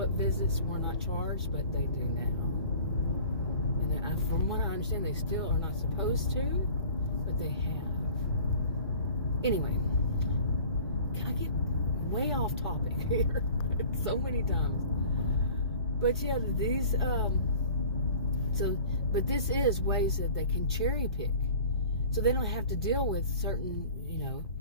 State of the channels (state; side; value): inverted; both; correlation -0.45